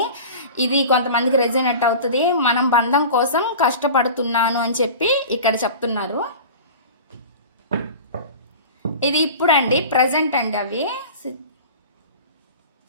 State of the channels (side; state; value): both; inverted; correlation -0.35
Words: ఇది కొంతమందికి రెజోనేట్ అవుతుంది. మనం బంధం కోసం కష్టపడుతున్నాను అని చెప్పి ఇక్కడ చెప్తున్నారు. ఇది ఇప్పుడు అండి, ప్రజెంట్ అండి అవి.